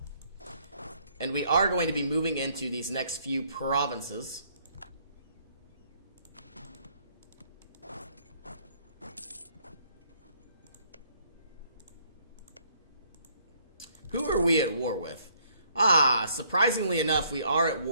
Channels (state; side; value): inverted; both; correlation -0.65